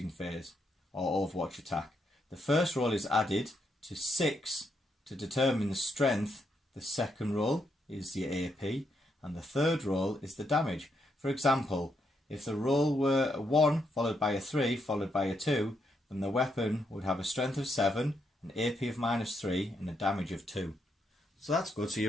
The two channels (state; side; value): normal; both; correlation 0.78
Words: phase or Overwatch attack. The first roll is added to 6 to determine the strength. The second roll is the AP, and the third roll is the damage. For example, if the roll were a 1 followed by a 3 followed by a 2, then the weapon would have a strength of 7, an AP of -3, and a damage of 2. So that's good. So